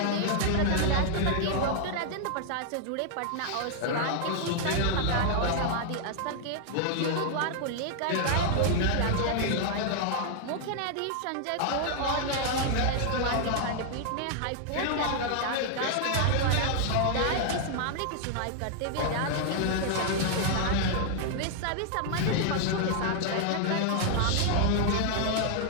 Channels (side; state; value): both; different; correlation 0.00